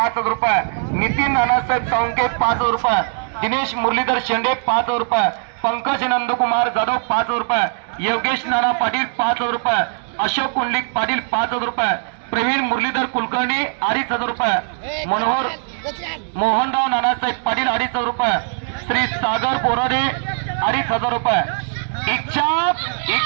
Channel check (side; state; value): left; silent; digital silence